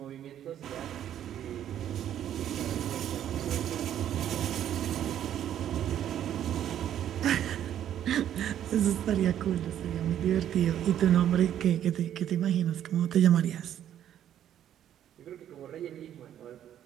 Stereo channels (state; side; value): quieter; left; 10.7 dB